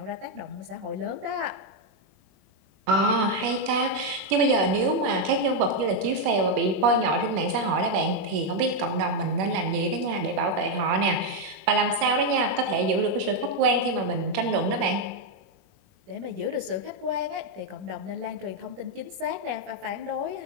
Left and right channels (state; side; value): late; left; 21 ms